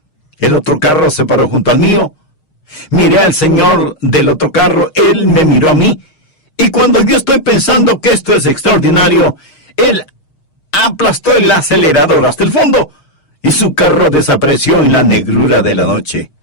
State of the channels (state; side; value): late; right; 6.4 ms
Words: El otro carro se paró junto al mío. Miré al señor del otro carro, él me miró a mí, y cuando yo estoy pensando que esto es extraordinario, él aplastó el acelerador hasta el fondo, y su carro desapareció en la negrura de la noche.